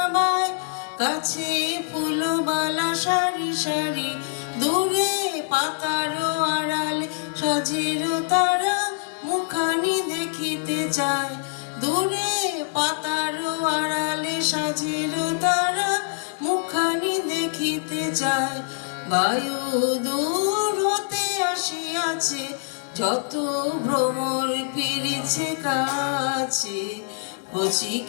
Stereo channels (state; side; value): silent; right; digital silence